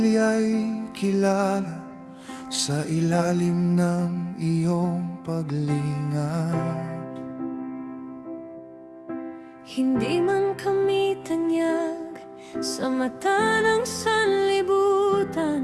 kilala sa ilalim ng iyong paglingat. Hindi man kami tanyag sa mata ng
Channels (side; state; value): both; identical; correlation 1.00